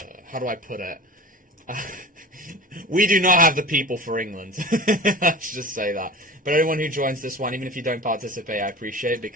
I put it? We do not have the people for England. Let's just say that. But anyone who joins this one, even if you don't participate, I appreciate it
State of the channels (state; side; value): normal; both; correlation 0.36